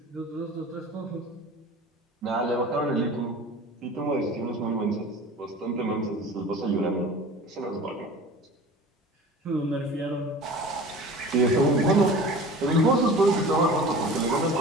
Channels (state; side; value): normal; both; correlation 0.39